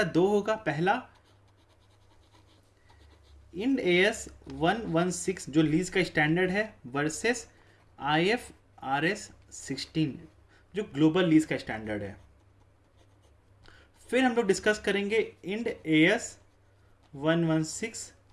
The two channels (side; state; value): both; identical; correlation 1.00